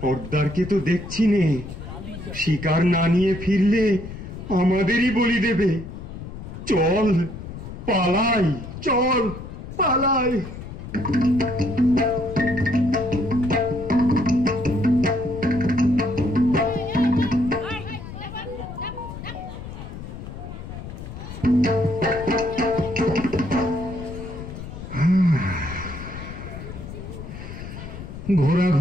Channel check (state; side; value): noise; left; rumble, 11 dB below the sound